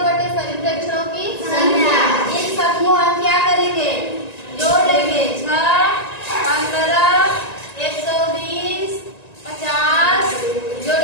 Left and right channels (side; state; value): right; late; 1.9 ms